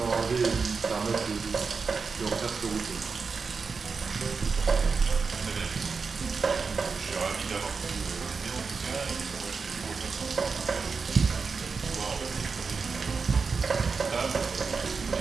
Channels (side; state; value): left; quieter; 5.0 dB